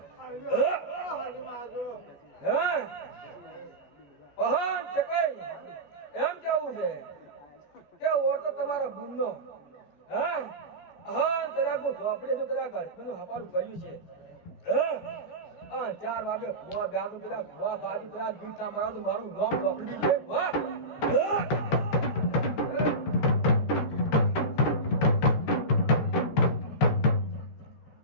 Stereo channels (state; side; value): late; right; 14 ms